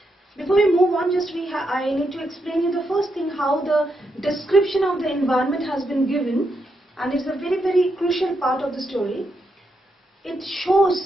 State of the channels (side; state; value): both; normal; correlation 0.82